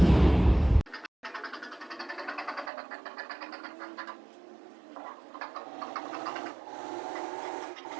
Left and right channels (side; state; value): left; drops out; at 2.7 s